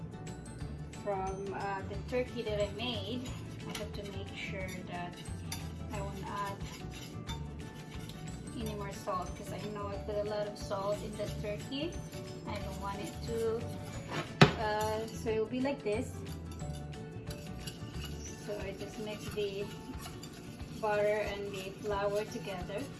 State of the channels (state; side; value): identical; both; correlation 1.00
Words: from the turkey that I made, I have to make sure that I won't add any more salt, because I know I put a lot of salt in the turkey. I don't want it to so it will be like this. So I just mix the butter and the flour together.